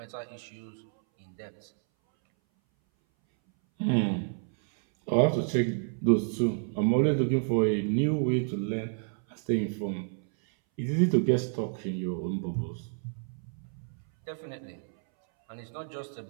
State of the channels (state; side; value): silent; left; 58 dB below the other